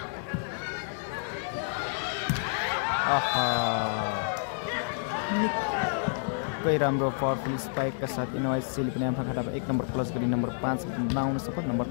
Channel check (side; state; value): right; silent; digital silence